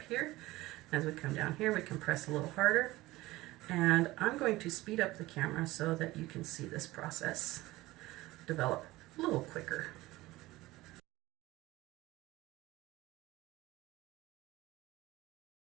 here. As we come down here, we can press a little harder. And I'm going to speed up the camera so that you can see this process develop a little quicker.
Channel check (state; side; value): quieter; left; 18.6 dB